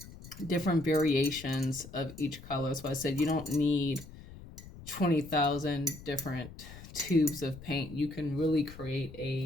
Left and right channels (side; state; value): left; noise; rumble, 16 dB below the sound